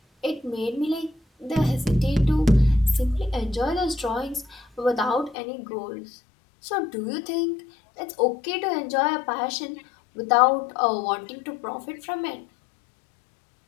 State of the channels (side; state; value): right; drops out; at 5.4 s